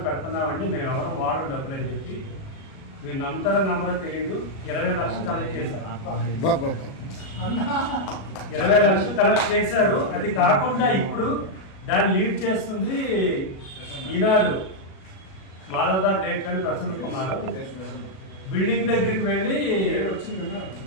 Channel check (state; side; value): late; right; 37 ms